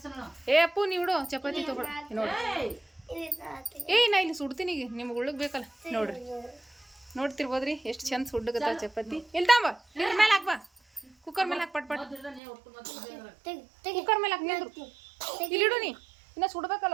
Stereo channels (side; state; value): left; drops out; at 12.4 s